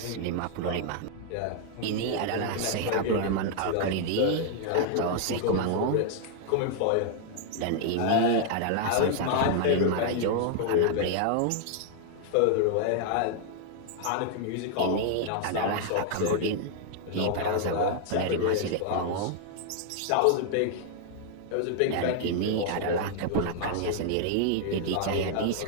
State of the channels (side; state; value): both; different; correlation 0.00